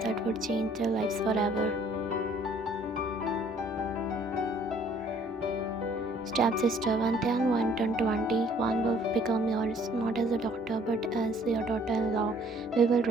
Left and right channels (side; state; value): both; normal; correlation 0.59